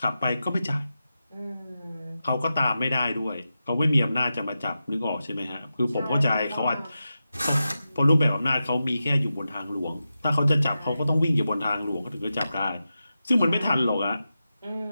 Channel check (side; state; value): both; inverted; correlation -0.91